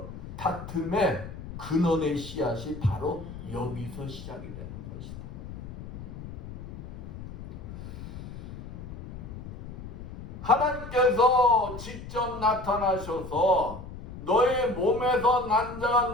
다툼의 근원의 씨앗이 바로 여기서 시작이 되는 것이다. 하나님께서 직접 나타나셔서 너의 몸에서 난 자가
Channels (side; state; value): left; noise; rumble, 11 dB below the sound